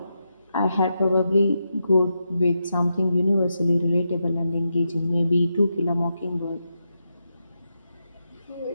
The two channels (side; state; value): both; inverted; correlation -0.86